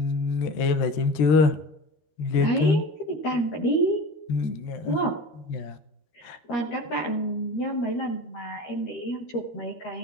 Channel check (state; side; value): late; right; 13 ms